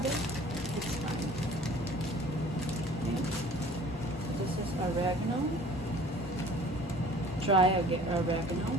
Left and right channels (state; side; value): normal; both; correlation 0.49